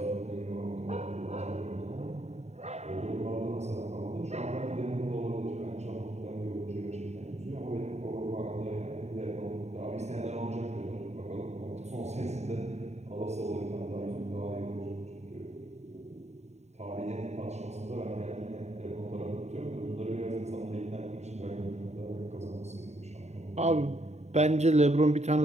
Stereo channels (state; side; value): late; left; 0.32 ms